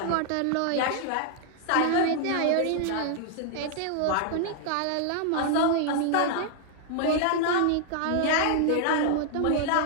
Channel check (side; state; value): both; different; correlation 0.00